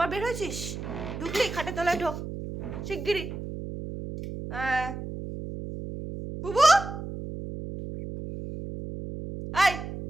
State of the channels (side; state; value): right; noise; hum, 8 dB below the sound